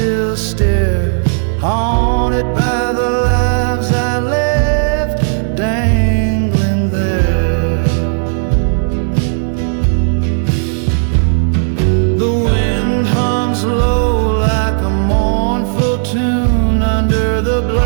stare, haunted by the lives I left dangling there. The wind hums low like a mournful tune under the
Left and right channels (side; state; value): left; silent; digital silence